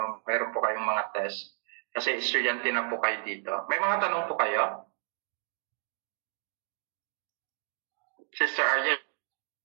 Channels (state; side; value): silent; left; 57 dB below the other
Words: Mayroon po kayong mga test. Kasi estudyante na po kayo dito. May mga tanong po kayo? Sister Ariel?